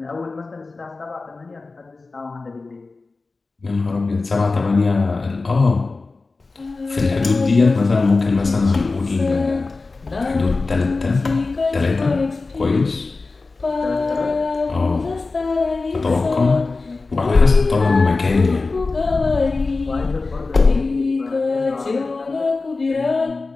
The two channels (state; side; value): quieter; right; 3.7 dB